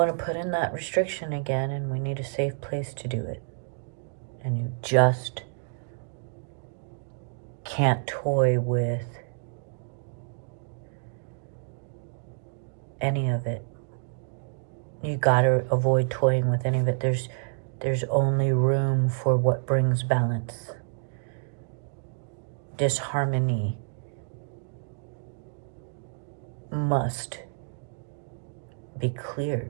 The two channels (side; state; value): left; silent; digital silence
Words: to put in that restriction again, and we need a safe place to do it. And you just can't toy with any of it. You gotta avoid toying with any of it. There's only room for what brings balance. Disharmony must be